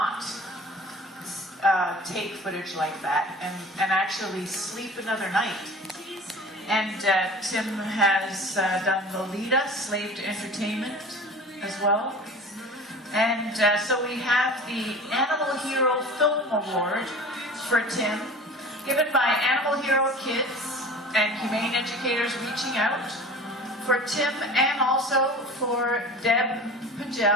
take footage like that and actually sleep another night. And Tim has done Lolita, Slave to Entertainment as well. And so we have the Animal Hero Film Award for Tim, given by Animal Hero Kids and Humane Educators Reaching Out, for Tim and also for Deb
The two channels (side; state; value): both; normal; correlation 0.39